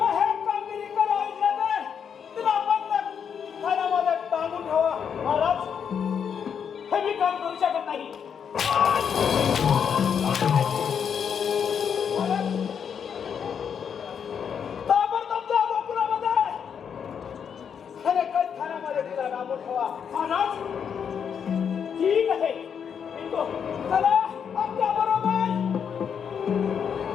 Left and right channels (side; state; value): right; quieter; 7.4 dB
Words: हे कामगिरी करावी लागेल तिला बंद खाण्यामध्ये टांगून ठेवा महाराज हे मी काम करू शकत नाही ताबडतोब जा गोकुळामध्ये आणि कैद खाण्यामध्ये तिला टांगून ठेवा महाराज ठीक आहे येतो. चला आमच्या बरोबर